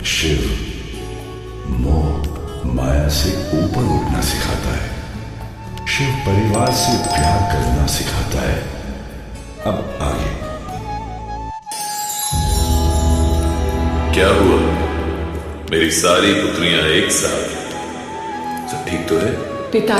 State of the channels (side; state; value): both; identical; correlation 1.00